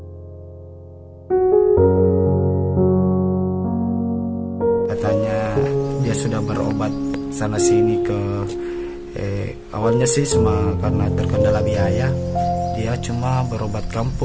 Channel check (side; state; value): both; identical; correlation 1.00